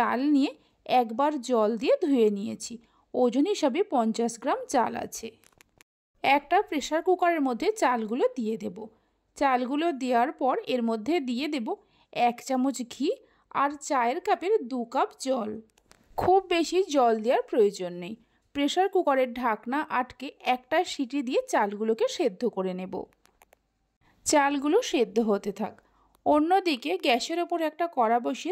নিয়ে একবার জল দিয়ে ধুয়ে নিয়েছি। ওজন হিসাবে 50 গ্রাম চাল আছে। একটা প্রেসার কুকারের মধ্যে চালগুলো দিয়ে দেব। চালগুলো দেওয়ার পর এর মধ্যে দিয়ে দেব 1 চামচ ঘি আর চায়ের কাপের 2 কাপ জল। খুব বেশি জল দেওয়ার প্রয়োজন নেই। প্রেসার কুকারের ঢাকনা আটকে একটা সিটি দিয়ে চালগুলোকে সেদ্ধ করে নেব। চালগুলো সেদ্ধ হতে থাক। অন্যদিকে গ্যাসের ওপর একটা কড়া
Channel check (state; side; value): identical; both; correlation 1.00